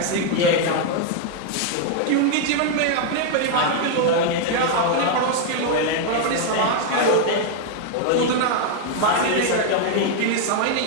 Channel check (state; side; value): different; both; correlation 0.00